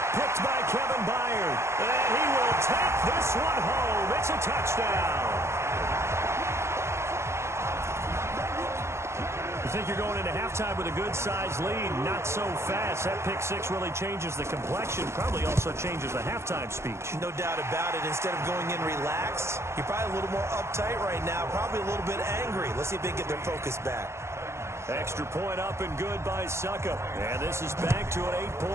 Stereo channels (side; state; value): left; late; 0.13 ms